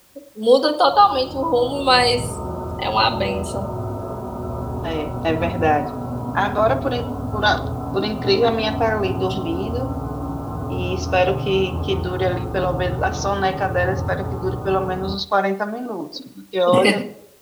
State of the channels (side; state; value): both; identical; correlation 1.00